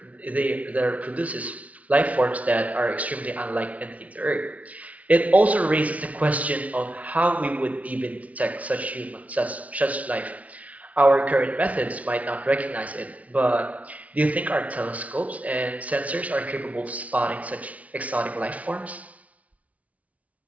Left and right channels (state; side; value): late; left; 0.068 ms